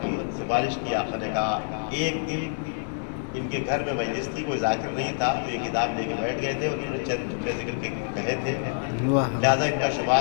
کی، سفارش کی. آقا نے کہا ایک دن ان کے گھر میں مجلس تھی، کوئی ذاکر نہیں تھا، تو یہ کتاب لے کے بیٹھ گئے تھے. انہوں نے چند جملے ذکر کے کہے تھے، لہٰذا ان کا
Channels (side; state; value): right; silent; 59 dB below the other